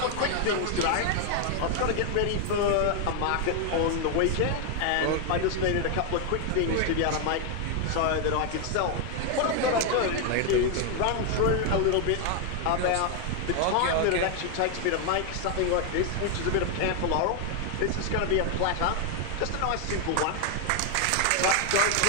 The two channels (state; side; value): different; both; correlation 0.01